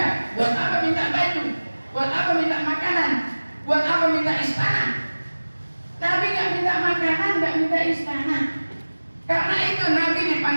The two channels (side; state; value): both; inverted; correlation -1.00